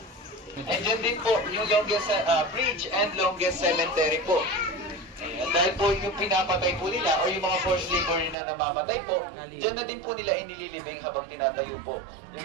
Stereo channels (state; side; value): drops out; left; at 8.3 s